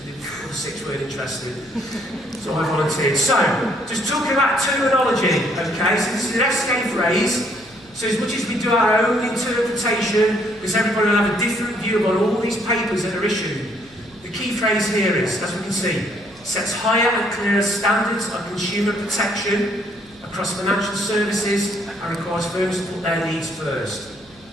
the other six weren't interested. So I volunteered. So, just talking about terminology, okay? So this is an FSExperience phrase. So as much as we do our own interpretation, because everybody will have a different view on all these papers that are issued, the key phrase here is, as we can see, sets higher and clearer standards of consumer protection across financial services and requires firms to put their needs first.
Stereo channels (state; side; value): noise; right; hum, 26 dB below the sound